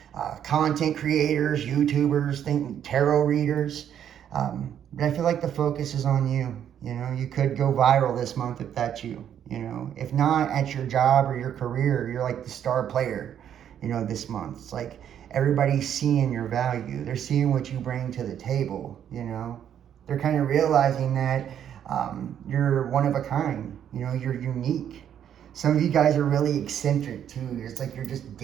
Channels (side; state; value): left; quieter; 9.5 dB